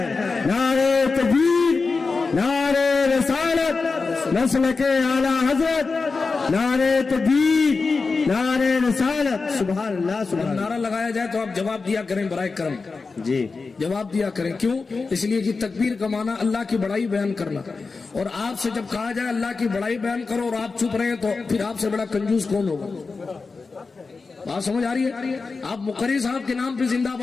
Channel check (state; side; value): quieter; right; 4.3 dB